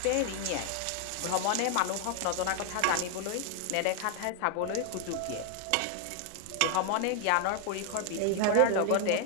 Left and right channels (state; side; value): different; both; correlation 0.01